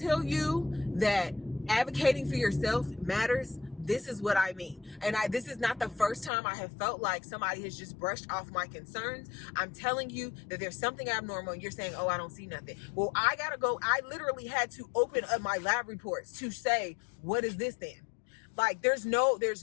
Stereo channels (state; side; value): drops out; right; at 6.3 s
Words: you that advocating for yourself matters, this is what I mean. And this is not the first time I have felt like somebody has just brushed off my concerns. I'm telling you that there's something abnormal and you're saying, oh, I don't see nothing. Well, I gotta go. I literally had to open up my lab reports to say, what is this then? Like, there's no